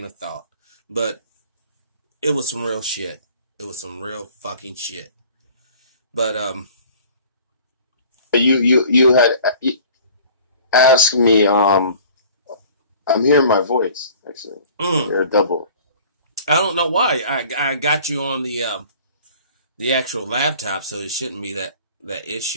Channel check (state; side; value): inverted; both; correlation -0.48